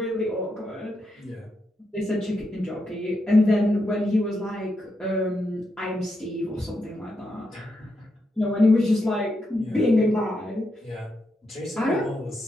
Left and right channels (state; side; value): normal; both; correlation 0.83